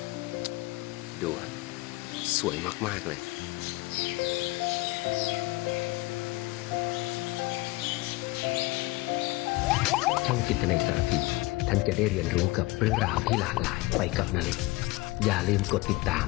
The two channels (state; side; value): quieter; right; 21.6 dB